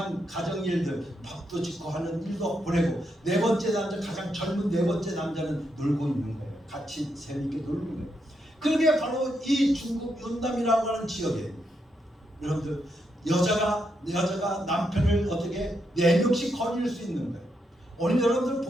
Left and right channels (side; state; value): both; normal; correlation 0.81